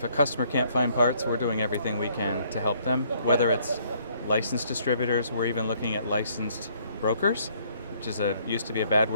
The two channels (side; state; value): both; inverted; correlation -0.64